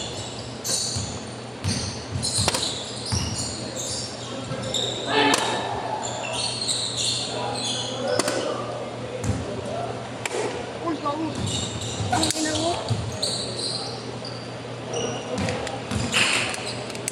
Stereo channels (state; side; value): identical; both; correlation 1.00